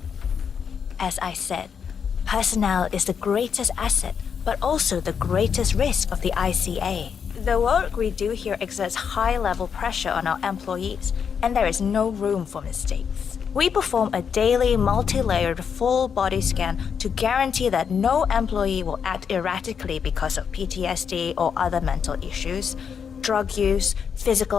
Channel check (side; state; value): right; quieter; 7.0 dB